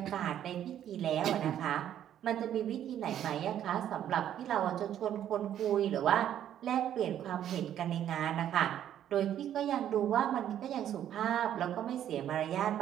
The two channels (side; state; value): left; quieter; 10.7 dB